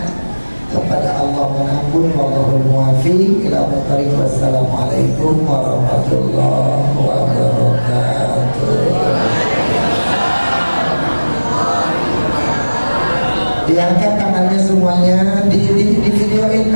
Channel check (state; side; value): inverted; both; correlation -1.00